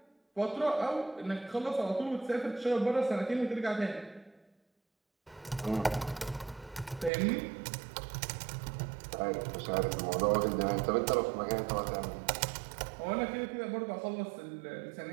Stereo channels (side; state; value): left; drops out; at 7.1 s